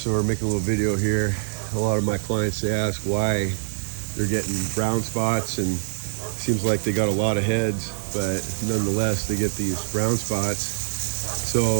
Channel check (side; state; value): left; silent; digital silence